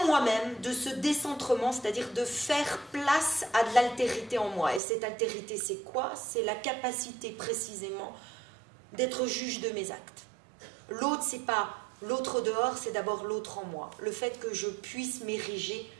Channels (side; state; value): left; drops out; at 4.8 s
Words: moi-même, de ce décentrement, c'est-à-dire de faire place à de l'altérité en moi. Et cette altérité, c'est quoi? C'est la capacité précisément d'être juge de mes actes. L'autre, c'est pas l'autre dehors, c'est d'abord l'autre en moi. Le fait que je puisse m'ériger